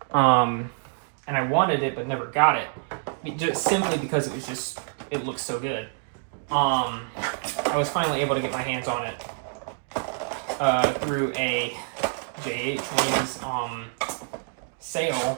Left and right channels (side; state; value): left; silent; 61 dB below the other